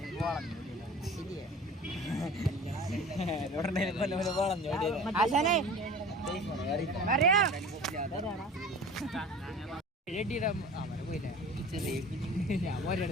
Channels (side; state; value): both; normal; correlation 0.41